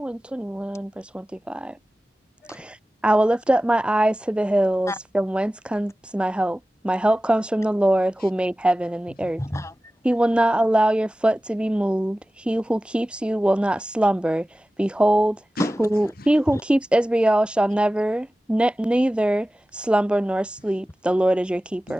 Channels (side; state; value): both; normal; correlation 0.96